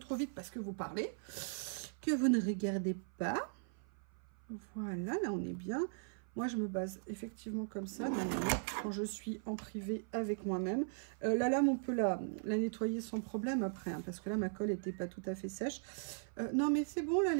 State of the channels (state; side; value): silent; left; 52 dB below the other